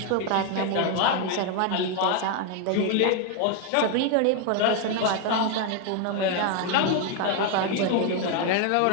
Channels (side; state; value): both; different; correlation 0.01